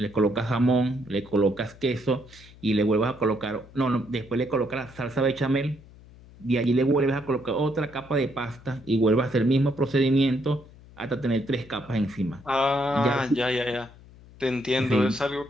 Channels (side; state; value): left; noise; hum, 22 dB below the sound